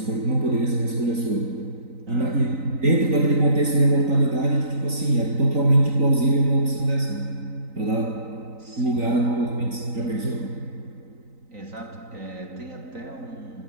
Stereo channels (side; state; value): left; late; 3.9 ms